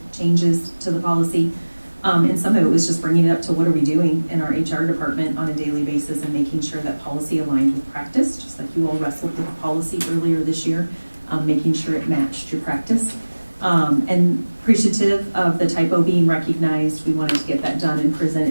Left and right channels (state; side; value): inverted; both; correlation -1.00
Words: changes to the policy. And some of it was just bringing it up to what are we doing in our HR department on a daily basis and making sure that policy aligned with practice, just like you all wrestled with the policy earlier this year, making sure it matched your practice. And appreciative of the typo being recognized, we wanted to get that done and present